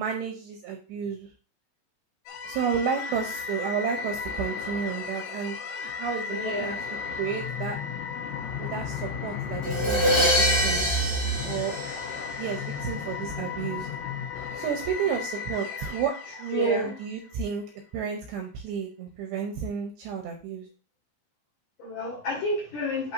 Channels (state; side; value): normal; both; correlation -0.01